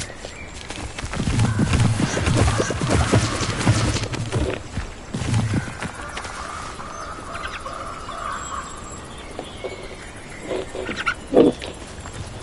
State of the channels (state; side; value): identical; both; correlation 1.00